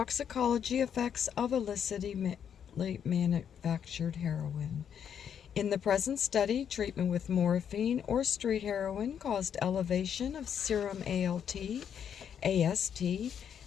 effects of illicitly manufactured heroin. In the present study, treatment with morphine or street heroin caused elevation of serum ALT, AST,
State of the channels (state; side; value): quieter; right; 8.3 dB